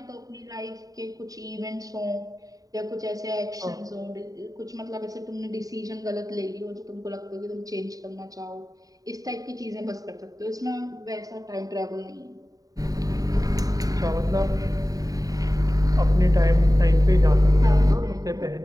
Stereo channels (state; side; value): late; left; 0.18 ms